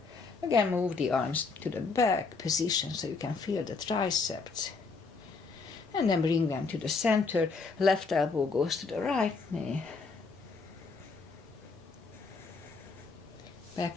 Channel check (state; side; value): quieter; right; 4.4 dB